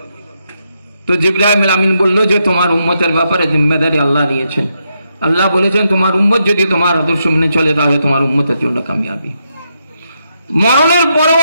তো জিবরাইল আমিন বলল যে তোমার উম্মতের ব্যাপারে জিম্মেদারি আল্লাহ নিয়েছেন। আল্লাহ বলেছেন তোমার উম্মত যদি তোমার আদর্শ মেনে চলে তাহলে তোমার উম্মতের জন্য কামিয়াবি। মরণের পরেও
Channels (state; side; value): inverted; both; correlation -0.82